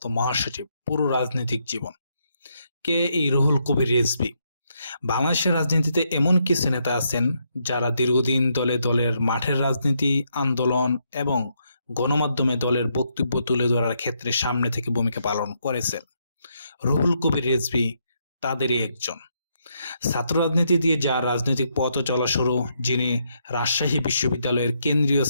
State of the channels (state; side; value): inverted; both; correlation -0.77